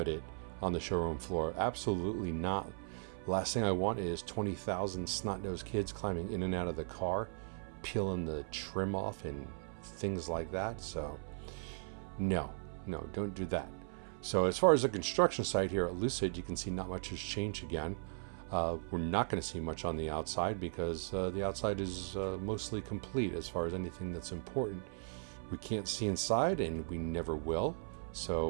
it on the showroom floor. Absolutely not. Last thing I want is 20,000 snot-nosed kids climbing in and out of the car, peeling the trim off and things like that. So no, don't do that. So as far as the construction site here at Lucid, you can see not much has changed again. We're not going to see much on the outside because the outside is mostly complete as far as anything that's important. We can't see inside, and we never will. So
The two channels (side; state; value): left; silent; 53 dB below the other